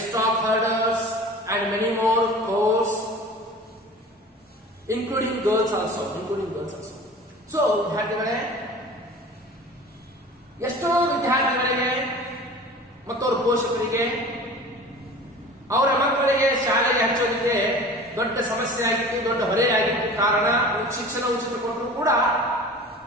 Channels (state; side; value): normal; both; correlation 0.40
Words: herders, and many more chores, including girls also. So, ಎಷ್ಟೋ ವಿದ್ಯಾರ್ಥಿಗಳಿಗೆ ಮತ್ತು ಅವರ ಪೋಷಕರಿಗೆ ಅವರ ಮಕ್ಕಳಿಗೆ ಶಾಲೆಗೆ ಹಚ್ಚೋದಕ್ಕೆ ದೊಡ್ಡ ಸಮಸ್ಯೆ ಆಗಿತ್ತು, ದೊಡ್ಡ ಹೊರೆಯಾಗಿತ್ತು. ಕಾರಣ ಶಿಕ್ಷಣ ಉಚಿತ ಕೊಟ್ಟರು ಕೂಡ